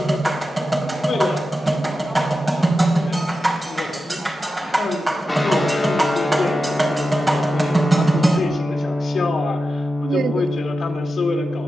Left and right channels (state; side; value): normal; both; correlation 0.91